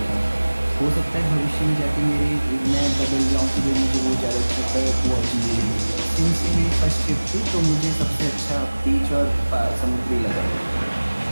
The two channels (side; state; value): both; inverted; correlation -1.00